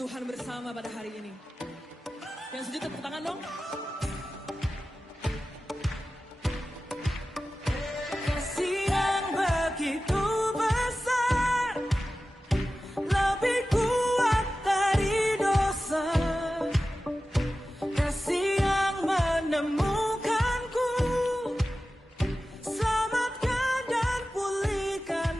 bersama pada hari ini. Yang setuju tepuk tangan dong. Kasih yang begitu besar, lebih kuat dari dosa. Kasih yang menemukanku, selamatkan dan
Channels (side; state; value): both; normal; correlation 0.95